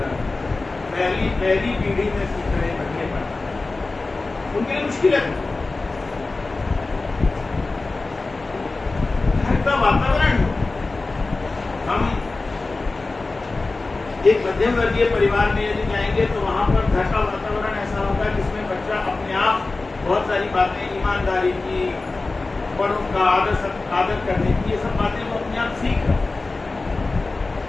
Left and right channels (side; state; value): right; quieter; 3.5 dB